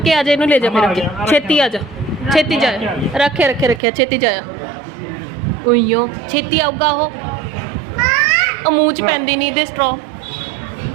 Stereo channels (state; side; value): drops out; left; at 3.8 s